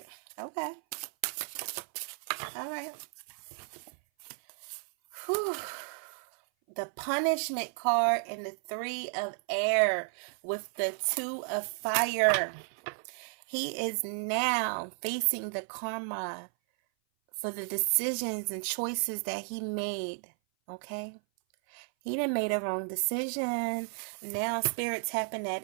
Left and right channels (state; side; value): silent; left; 56 dB below the other